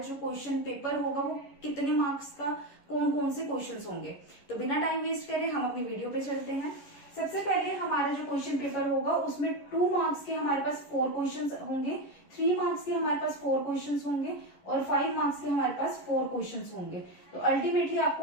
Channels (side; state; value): right; late; 11 ms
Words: क्वेश्चन पेपर होगा वो कितने मार्क्स का, कौन कौन से क्वेश्चंस होंगे। तो बिना टाइम वेस्ट करे हम अपनी वीडियो पे चलते हैं। सबसे पहले हमारा जो क्वेश्चन पेपर होगा उसमें 2 मार्क्स के हमारे पास 4 क्वेश्चंस होंगे, 3 मार्क्स के हमारे पास 4 क्वेश्चंस होंगे और 5 मार्क्स के हमारे पास 4 क्वेश्चंस होंगे। तो अल्टीमेटली